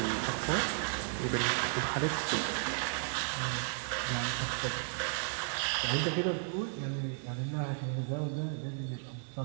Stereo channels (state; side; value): silent; left; 55 dB below the other